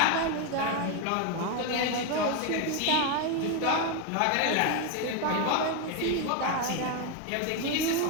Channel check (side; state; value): both; different; correlation 0.02